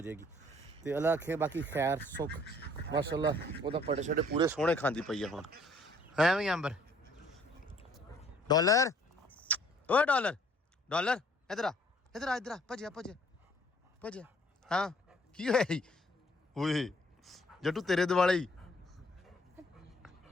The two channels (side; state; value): both; normal; correlation 0.60